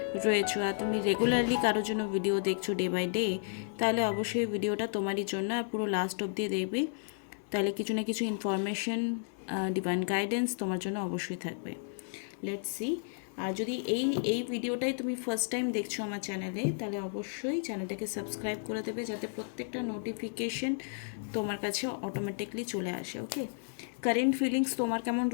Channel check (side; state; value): right; silent; 56 dB below the other